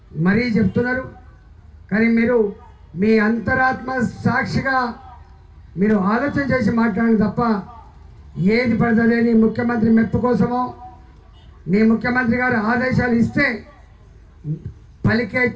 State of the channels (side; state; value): both; identical; correlation 1.00